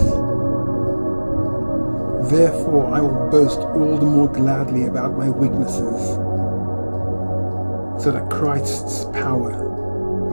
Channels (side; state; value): both; inverted; correlation -1.00